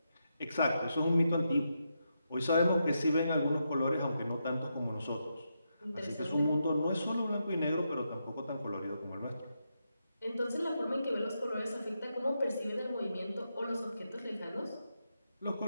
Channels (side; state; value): both; inverted; correlation -0.84